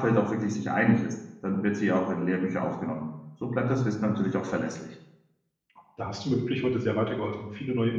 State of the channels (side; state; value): both; identical; correlation 1.00